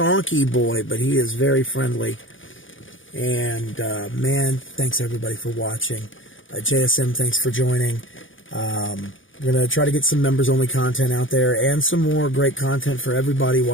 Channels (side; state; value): right; late; 0.57 ms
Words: boy, but he is very friendly. And, man, thanks everybody for watching. JSM, thanks for joining. We're going to try to get some members-only content out there and some more great content for everybody